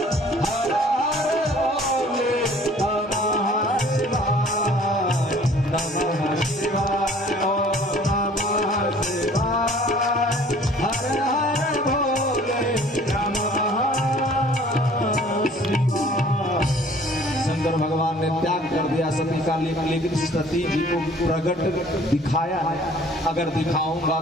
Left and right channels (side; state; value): both; normal; correlation 0.53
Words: शंकर भगवान ने त्याग कर दिया सती का, लेकिन सती जी को प्रकट दिखाया है। अगर दिखाऊंगा